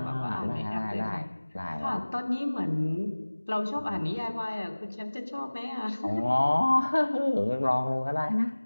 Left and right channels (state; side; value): inverted; both; correlation -1.00